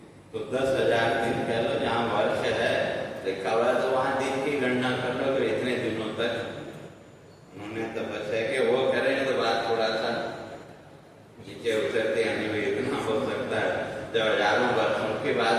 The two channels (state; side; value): identical; both; correlation 1.00